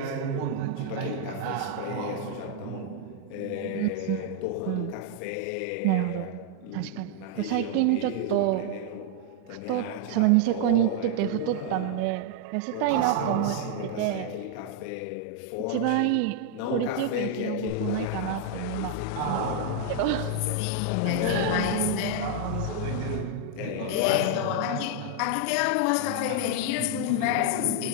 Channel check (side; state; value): both; different; correlation 0.00